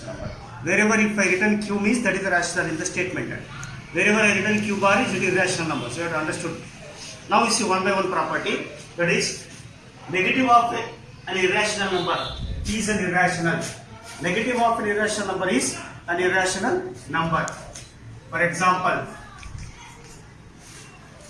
number. Wherever if I written Q means that is the rational in the statement. Wherever I written Q bar is it is irrational number. So you have understood. Now we see one by one property, that is negative of an irrational number is an irrational. Negative of an irrational number is an irrational number. For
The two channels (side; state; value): both; identical; correlation 1.00